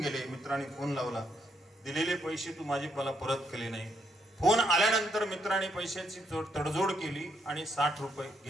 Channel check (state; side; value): normal; both; correlation 0.76